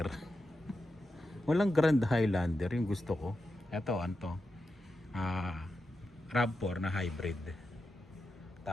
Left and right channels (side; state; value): both; normal; correlation 0.89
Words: Walang Grand Highlander, yung gusto ko. Ito, ano to? RAV4 na hybrid.